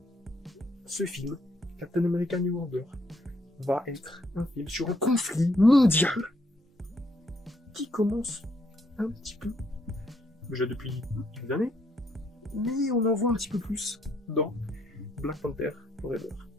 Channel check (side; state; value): both; normal; correlation 0.72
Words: Ce film, Captain America New Order, va être un film sur un conflit mondial qui commence un petit peu, déjà depuis quelques années, mais on en voit un petit peu plus dans Black Panther Forever,